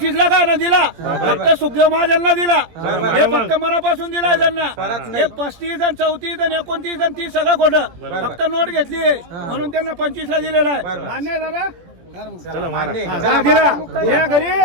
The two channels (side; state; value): left; late; 17 ms